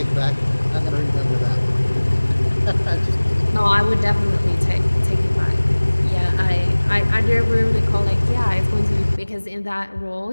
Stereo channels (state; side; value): inverted; both; correlation -1.00